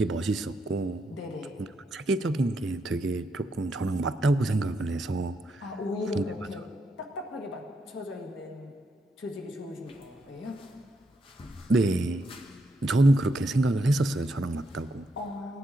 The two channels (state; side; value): normal; both; correlation 0.79